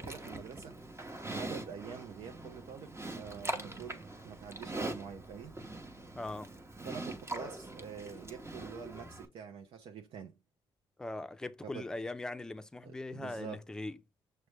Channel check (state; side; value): normal; both; correlation 0.66